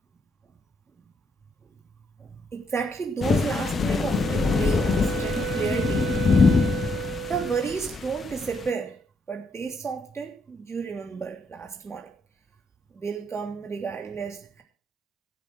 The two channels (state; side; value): normal; both; correlation 0.75